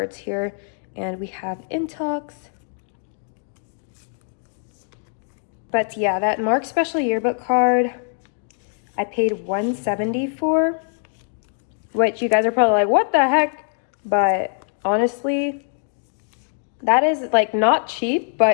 here. And we have Intox. But yeah, that Mark Special Yearbook card, I paid $170 for, which you guys are probably like, what the heck? But honestly, that is like not cheap,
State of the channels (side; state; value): right; silent; 59 dB below the other